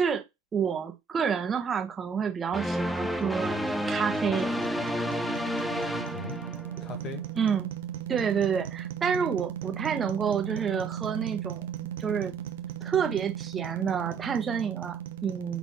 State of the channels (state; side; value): quieter; left; 5.2 dB